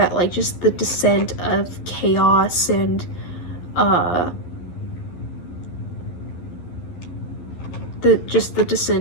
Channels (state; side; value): late; right; 11 ms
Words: like just the descent of chaos and the